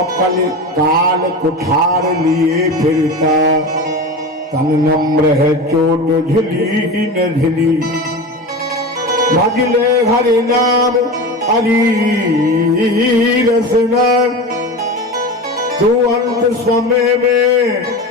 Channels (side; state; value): both; normal; correlation 0.27